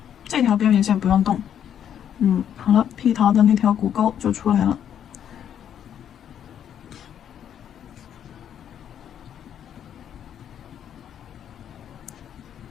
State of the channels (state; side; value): quieter; right; 9.4 dB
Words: 这条边缘线不用动，好了，屁桃的那条骨沟就出来了。